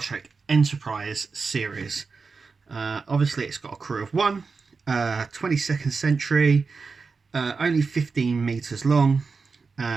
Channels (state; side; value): quieter; left; 4.7 dB